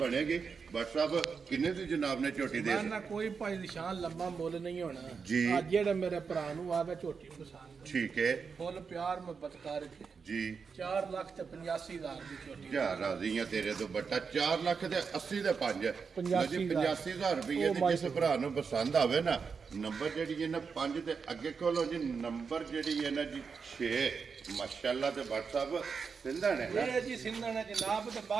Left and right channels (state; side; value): quieter; left; 5.6 dB